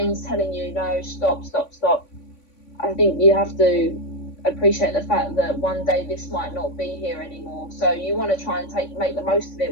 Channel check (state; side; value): late; right; 3.5 ms